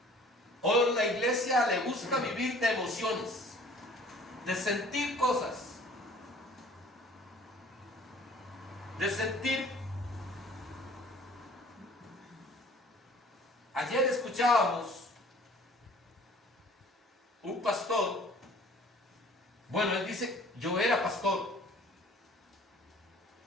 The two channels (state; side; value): normal; both; correlation 0.51